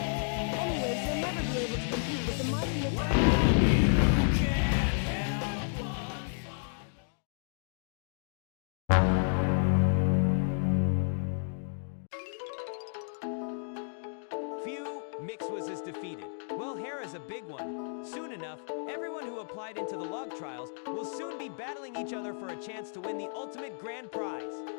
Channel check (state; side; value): silent; right; digital silence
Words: Anyways, you'll never be able to compete with the mighty Mixer. Phew, Mixwas is defeated. Well, Hera's a big one. Soon enough, everyone who applied into the log trials will soon be battling each other for a chance to win the ultimate grand prize.